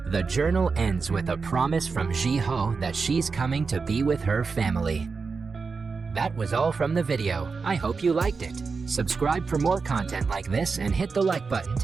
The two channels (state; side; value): quieter; left; 4.8 dB